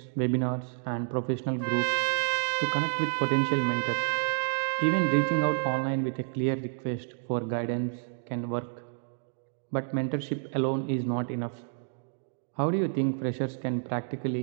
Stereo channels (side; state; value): left; silent; digital silence